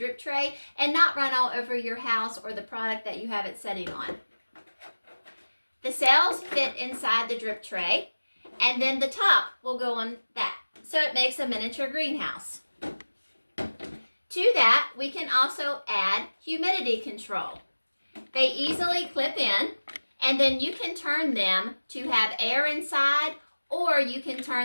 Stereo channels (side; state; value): both; inverted; correlation -1.00